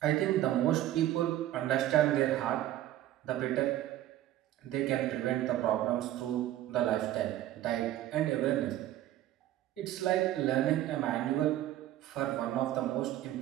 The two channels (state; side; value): quieter; left; 13.6 dB